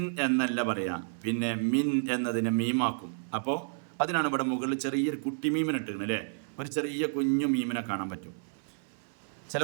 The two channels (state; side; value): silent; left; 57 dB below the other